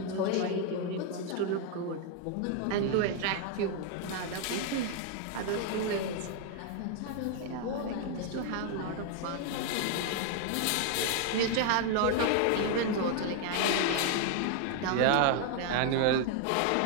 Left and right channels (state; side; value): different; both; correlation 0.01